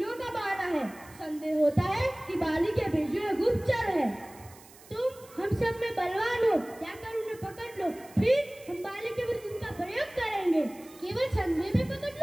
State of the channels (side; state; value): right; noise; hiss, 22 dB below the sound